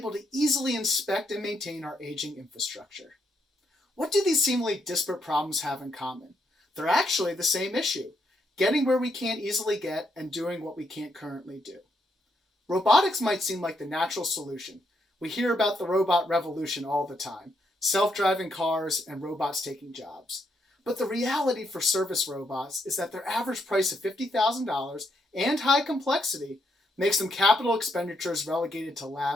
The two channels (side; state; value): both; normal; correlation 0.78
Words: to easily inspect and maintain our aging infrastructure. What do these seemingly disparate problems have in common? They're actually the same issue: getting where we can't easily get and doing what we can't currently do. Robotics might seem like the natural solution. We hear about the robot revolution all the time: self-driving cars and robots taking jobs. But the reality for service robots is that their average price of $50,000 and high complexity makes them capital expenditures relegated to